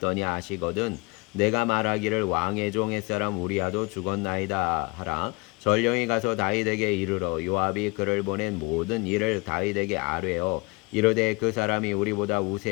하시거든 내가 말하기를 왕의 종 햇사람 우리아도 죽었나이다 하라. 전령이 가서 다윗에게 이르러 요압이 그를 보낸 모든 일을 다윗에게 아뢰어 이르되 그 사람이 우리보다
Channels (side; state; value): right; quieter; 27.2 dB